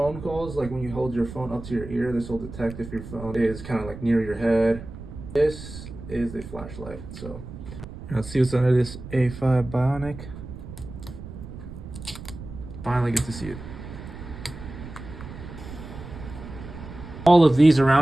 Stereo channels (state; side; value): noise; right; rumble, 12 dB below the sound